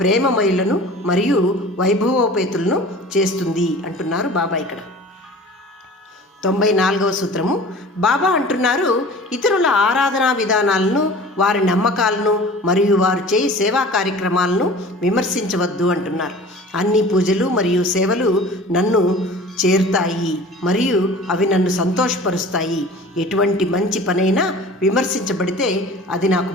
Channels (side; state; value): both; normal; correlation 0.42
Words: ప్రేమమయులను మరియు వైభవోపేతులను చేస్తుంది అంటున్నారు బాబా ఇక్కడ. 94వ సూత్రము. బాబా అంటున్నారు, ఇతరుల ఆరాధనా విధానాలను, వారి నమ్మకాలను మరియు వారు చేయి సేవా కార్యక్రమాలను విమర్శించవద్దు అంటున్నారు. అన్ని పూజలు మరియు సేవలు నన్ను చేరుతాయి మరియు అవి నన్ను సంతోషపరుస్తాయి. ఎటువంటి మంచి పనైనా విమర్శించబడితే అది నాకు